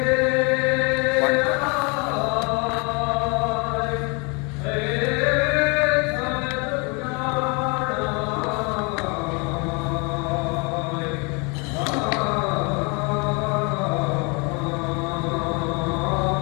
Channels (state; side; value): quieter; right; 31.4 dB